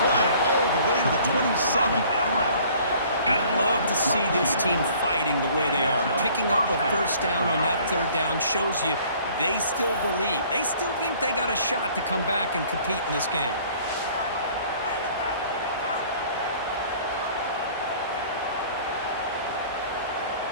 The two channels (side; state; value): both; inverted; correlation -0.54